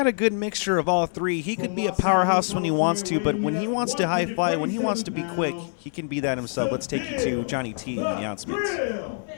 a good mixture of all three. He could be a powerhouse when he wants to, but when he wants to high fly, when he wants to be quick, he can be that himself. Let's take you to Johnny T in the announcements.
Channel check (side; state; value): right; silent; digital silence